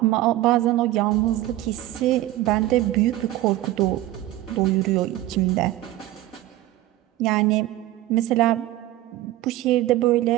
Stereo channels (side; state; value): left; quieter; 15.5 dB